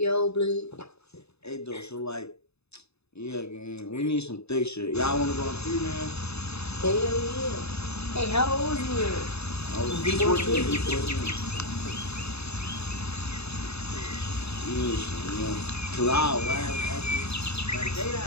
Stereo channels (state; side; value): late; right; 0.79 ms